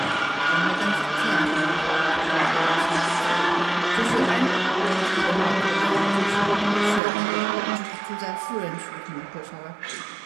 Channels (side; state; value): left; drops out; at 7.0 s